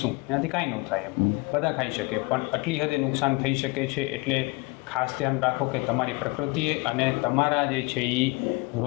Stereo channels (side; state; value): right; quieter; 26.0 dB